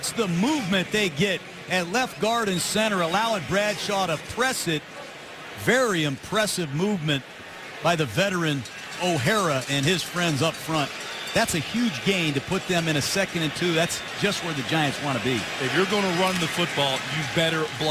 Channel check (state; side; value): identical; both; correlation 1.00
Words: the movement they get at left guard and center, allowing Bradshaw to press it. Very impressive movement by the veteran O'Hara and his friends up front. That's a huge gain to put them in a 2nd and 2. That's just where the Giants want to be. If you're going to run the football, you better